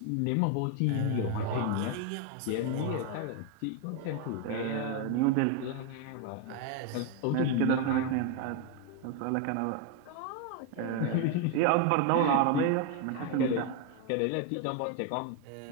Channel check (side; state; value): both; different; correlation 0.01